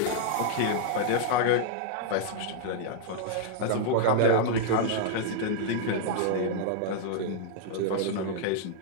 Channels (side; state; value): both; different; correlation -0.01